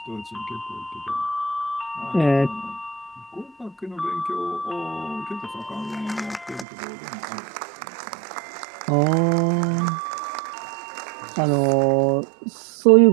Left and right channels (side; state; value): left; drops out; at 6.7 s